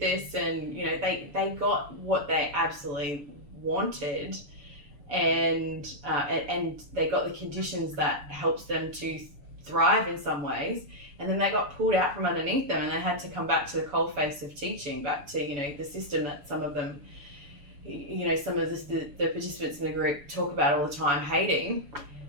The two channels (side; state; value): left; late; 6.9 ms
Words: And, you know, they got what they absolutely wanted, and they got the conditions that helps them to thrive in some ways. And then they got pulled out from underneath them, and they had to come back to the coalface of teaching, back to, you know, the system that some of them, you know, some of the participants in the group talk about all the time hating.